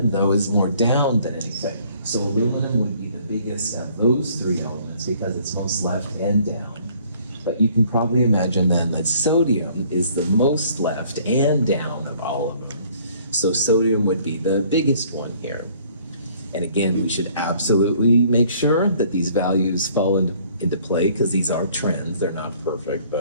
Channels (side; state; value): both; inverted; correlation -0.58